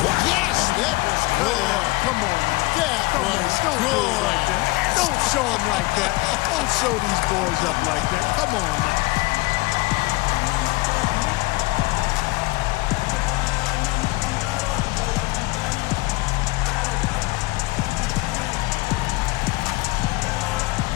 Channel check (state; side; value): quieter; right; 22.7 dB